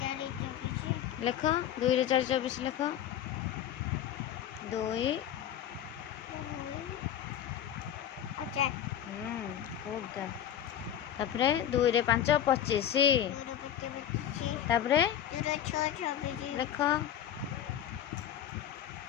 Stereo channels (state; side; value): quieter; right; 10.3 dB